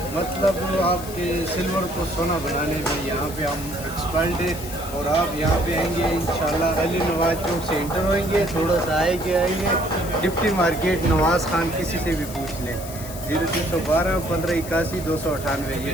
मतलब आपके सिल्वर को सोना बनाने में यहाँ पे हम एक्सपर्ट है। और आप यहाँ पे आएंगे इंशाल्लाह अली नवाज चौक से इंटर होंगे, थोड़ा सा आएंगे डिप्टी मार्केट नवाज खान, किसी से भी पूछ लें। 0312 1581 298 ये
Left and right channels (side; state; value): left; noise; hiss, 13 dB below the sound